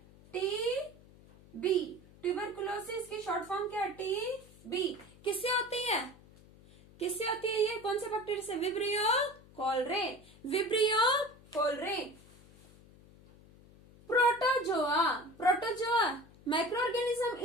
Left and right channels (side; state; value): left; noise; hum, 24 dB below the sound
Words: टीबी। ट्यूबरकुलोसिस की शॉर्ट फॉर्म क्या है, टीबी। किससे होती है, किससे होती है ये, कौन से बैक्टीरिया से, vibrio cholerae, vibrio cholerae. Protozoa, protozoa micro organism,